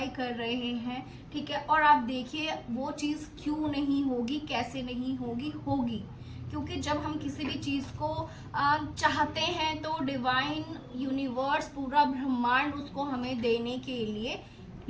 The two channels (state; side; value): identical; both; correlation 1.00